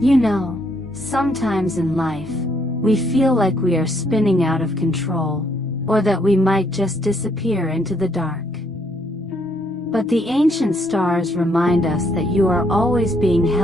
You know, sometimes in life, we feel like we are spinning out of control, or that we might just disappear into the dark. But the ancient stars remind us that you are always being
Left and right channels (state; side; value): normal; both; correlation 0.71